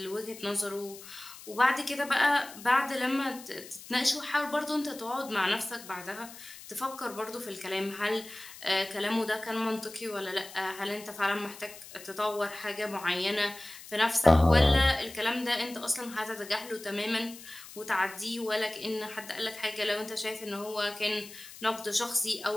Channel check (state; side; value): noise; left; hiss, 16 dB below the sound